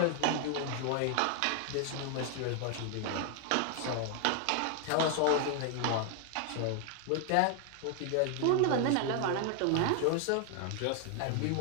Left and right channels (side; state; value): both; different; correlation 0.00